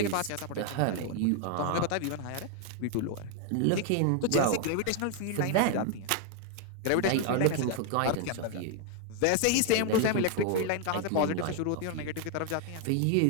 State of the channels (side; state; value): both; different; correlation 0.00